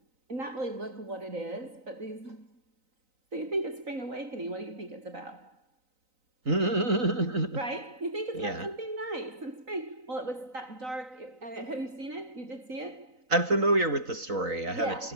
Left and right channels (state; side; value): late; left; 3.9 ms